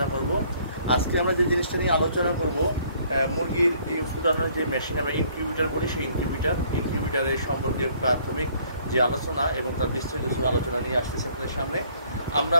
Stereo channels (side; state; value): both; inverted; correlation -0.61